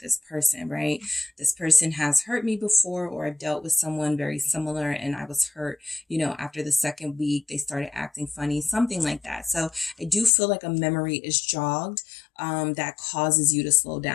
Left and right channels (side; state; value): right; drops out; at 10.3 s